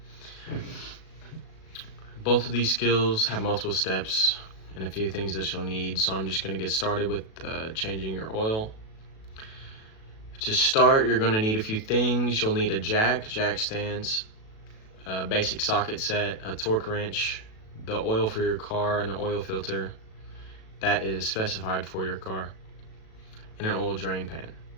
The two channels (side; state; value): right; late; 37 ms